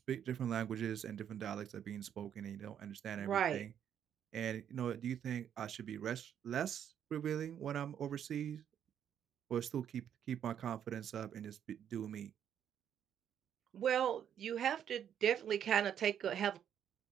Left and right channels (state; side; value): quieter; left; 9.2 dB